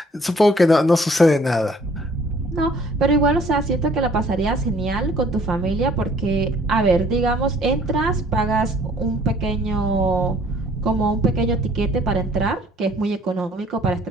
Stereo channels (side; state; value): both; normal; correlation 0.58